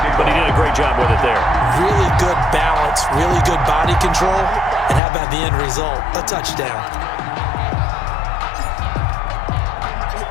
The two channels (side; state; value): right; drops out; at 5.0 s